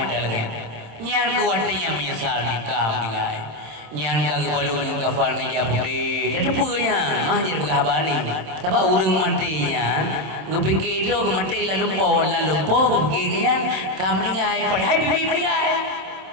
mana lagi? Nyan kuatnya menyesal ni kau meninggal. Nyan kaki balun kafal ni japudi. Dah tepurnya mahjid berhabari. Sebab urang matinya, ngepikir tu mati lalu po pikirkan kau meninggal. Padahal bibi meninggal.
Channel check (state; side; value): late; left; 27 ms